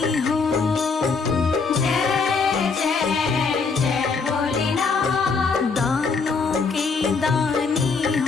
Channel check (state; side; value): quieter; right; 4.8 dB